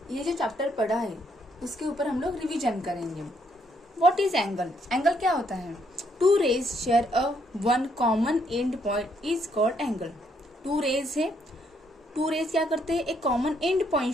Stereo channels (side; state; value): both; normal; correlation 0.72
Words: ये जो चैप्टर पढ़ा है उसके ऊपर हम लोग रिवीजन करेंगे। What is angle? एंगल क्या होता है? Two rays share a one common end point is called angle. Two rays है, टू रेज क्या करते हैं? एक कॉमन एंड पॉइंट